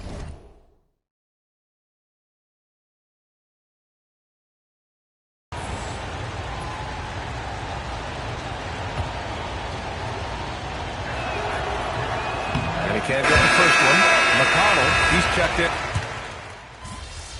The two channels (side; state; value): both; identical; correlation 1.00